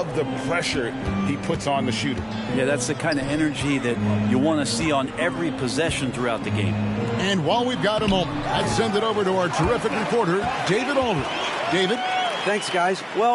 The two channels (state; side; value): identical; both; correlation 1.00